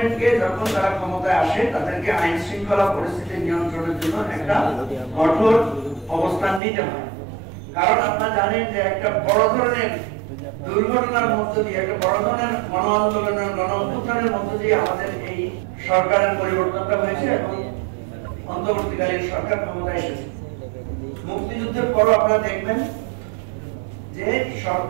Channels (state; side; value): drops out; left; at 6.6 s